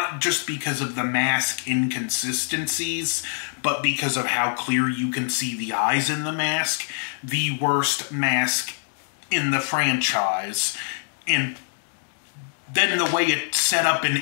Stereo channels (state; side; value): silent; right; digital silence